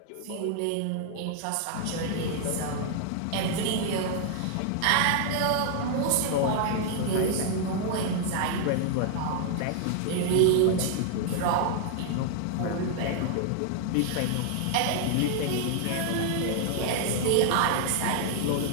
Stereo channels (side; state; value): both; different; correlation -0.01